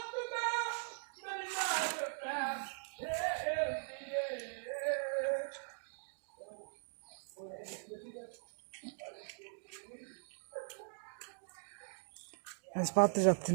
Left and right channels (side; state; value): left; silent; digital silence